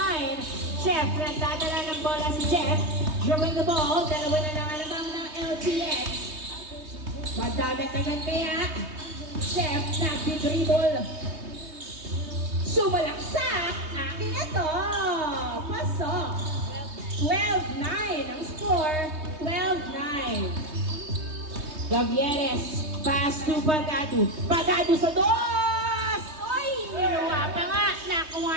Jeff, nagdadala ng bola si Jeff. Drawing the ball. Dalawa na lang alamang ng LTX. Magdadagdagan kaya. Chef, nagdi-dribble. Sumalaksak. Akin na to. Pasok. 12-9 ang score. 12-9. Gavieres. Pass to Pagado. Pagado sa dos! Oy! Niluwa pa nga. Nakuha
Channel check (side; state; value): left; late; 3.2 ms